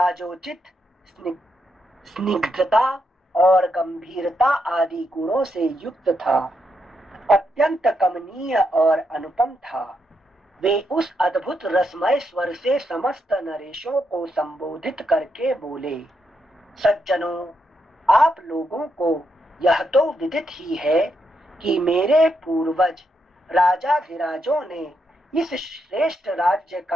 स्निग्धता और गंभीरता आदि गुणों से युक्त था, अत्यंत कमनीय और अनुपम था। वे उस अद्भुत रसमय स्वर से समस्त नरेशों को संबोधित करके बोले, सज्जनों, आप लोगों को यह तो विदित ही है कि मेरे पूर्वज राजाधिराजों ने इस श्रेष्ठ राज्य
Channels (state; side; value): normal; both; correlation 0.81